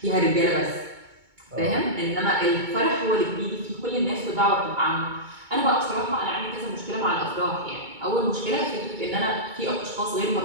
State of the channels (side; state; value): left; late; 2.2 ms